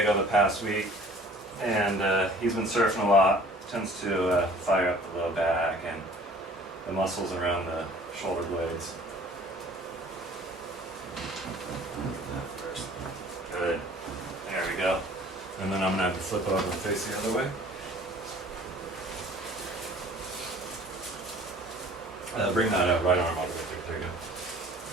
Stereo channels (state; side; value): normal; both; correlation 0.50